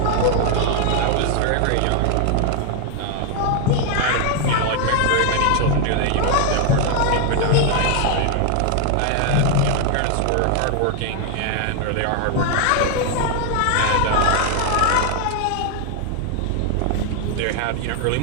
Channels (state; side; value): different; both; correlation 0.00